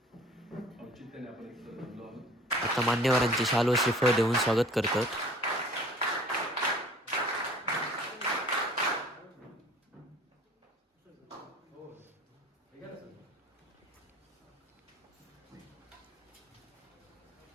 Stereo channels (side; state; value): both; normal; correlation 0.49